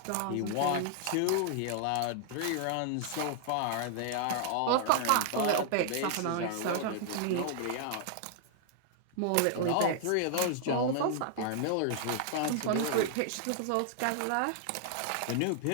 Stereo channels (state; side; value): different; both; correlation 0.00